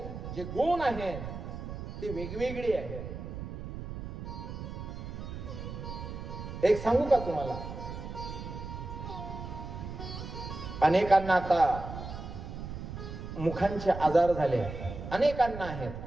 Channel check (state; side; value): noise; right; rumble, 8 dB below the sound